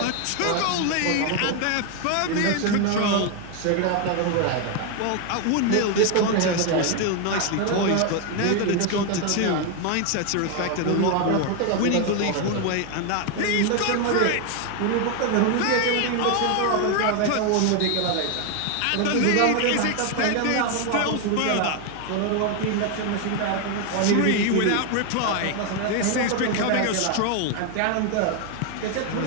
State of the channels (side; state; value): both; different; correlation 0.01